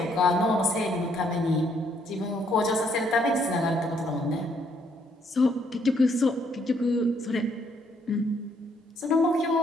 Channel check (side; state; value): both; normal; correlation 0.69